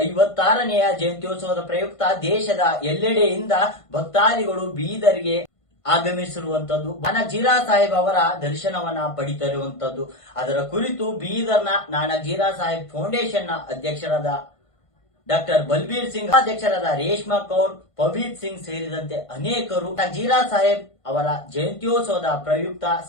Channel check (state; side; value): late; right; 1.5 ms